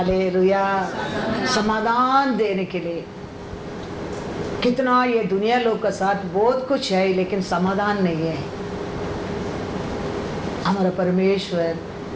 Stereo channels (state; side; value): identical; both; correlation 1.00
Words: समाधान देने के लिए कितना ये दुनिया लोग का साथ बहुत कुछ है, लेकिन समाधान नहीं है। हमारा परमेश्वर